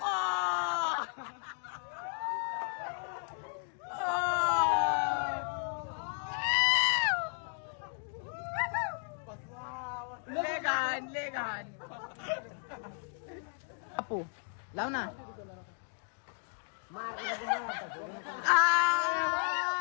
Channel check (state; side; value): silent; right; 55 dB below the other